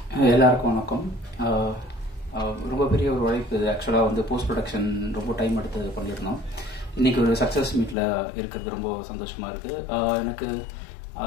எல்லாருக்கும் வணக்கம். ரொம்ப பெரிய ஒரு உழைப்பு இது. ஆக்சுவலாக வந்து போஸ்ட் ப்ரொடக்ஷன் ரொம்ப டைம் எடுத்து பண்ணியிருந்தோம். இன்னைக்கு ஒரு சக்ஸஸ் மீட்டில் இருக்கிறது ரொம்ப சந்தோஷமா இருக்கு. எனக்கு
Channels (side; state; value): right; drops out; at 8.0 s